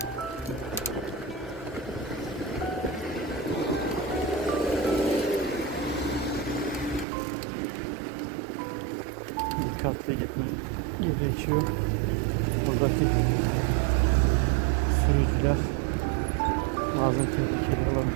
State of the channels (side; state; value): left; drops out; at 7.1 s